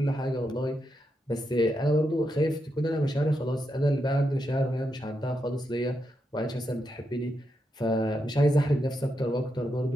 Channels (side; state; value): both; normal; correlation 0.84